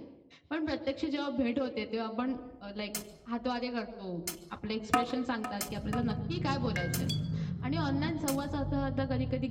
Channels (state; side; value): identical; both; correlation 1.00